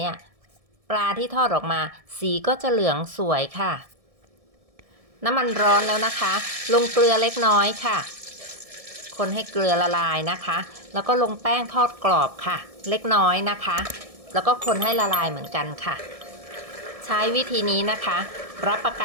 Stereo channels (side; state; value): left; late; 1.7 ms